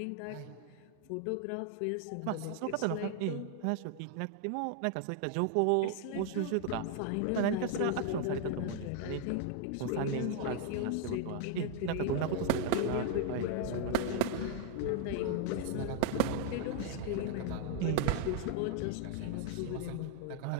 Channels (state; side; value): different; both; correlation 0.00